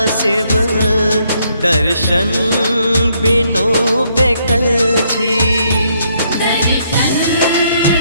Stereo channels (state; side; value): inverted; both; correlation -0.72